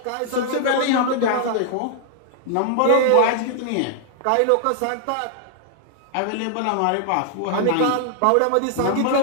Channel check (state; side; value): different; both; correlation 0.00